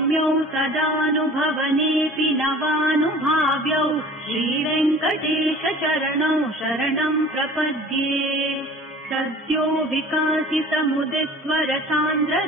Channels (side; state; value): both; normal; correlation 0.44